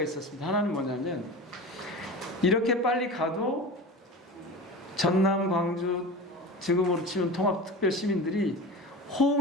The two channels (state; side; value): normal; both; correlation 0.31